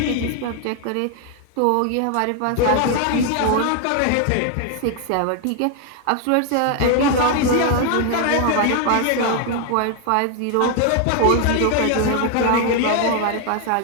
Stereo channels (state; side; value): different; both; correlation 0.00